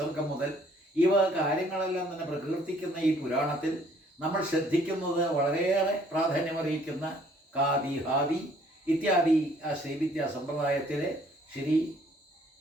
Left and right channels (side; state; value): both; normal; correlation 0.61